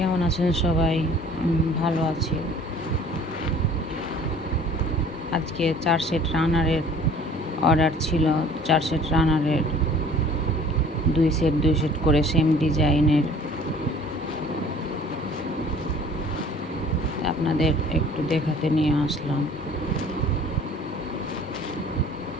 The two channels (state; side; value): normal; both; correlation 0.50